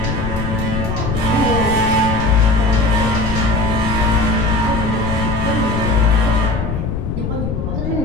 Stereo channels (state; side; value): noise; left; rumble, 3 dB below the sound